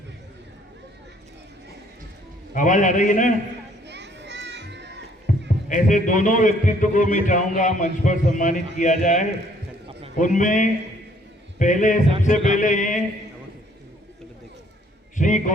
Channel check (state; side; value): normal; both; correlation 0.63